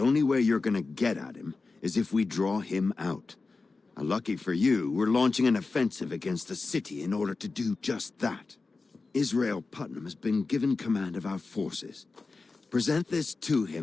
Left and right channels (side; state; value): right; quieter; 3.9 dB